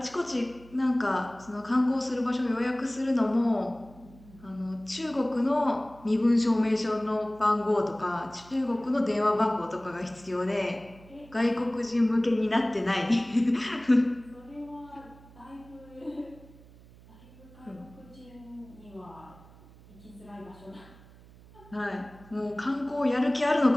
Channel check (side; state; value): right; noise; hum, 23 dB below the sound